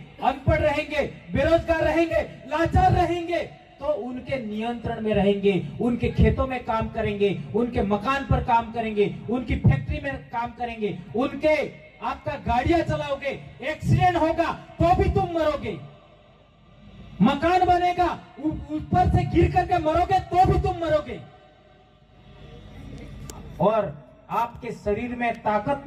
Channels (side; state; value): both; identical; correlation 1.00